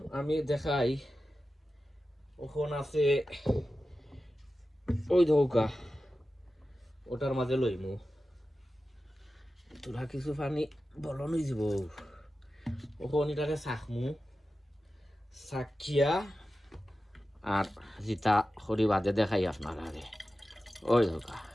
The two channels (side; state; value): both; normal; correlation 0.93